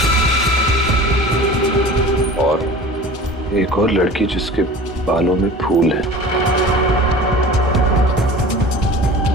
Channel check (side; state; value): both; normal; correlation 0.40